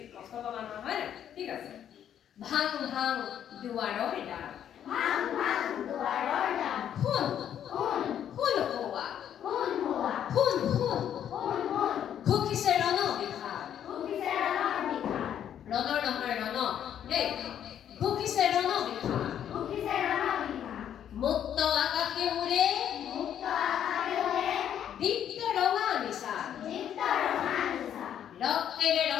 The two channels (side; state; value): right; quieter; 9.8 dB